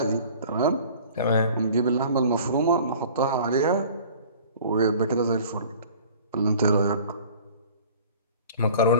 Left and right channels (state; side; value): inverted; both; correlation -0.47